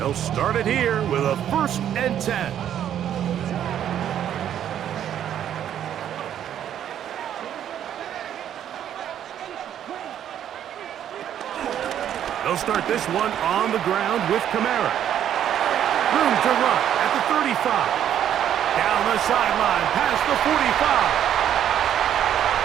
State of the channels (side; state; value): left; quieter; 10.2 dB